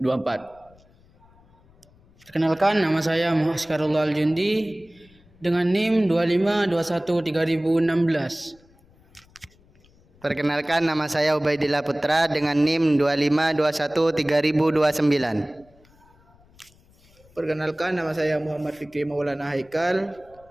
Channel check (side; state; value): left; noise; rumble, 30 dB below the sound